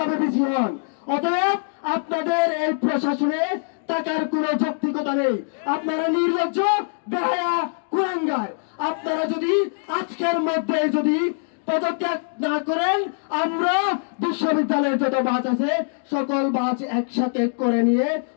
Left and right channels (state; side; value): silent; right; digital silence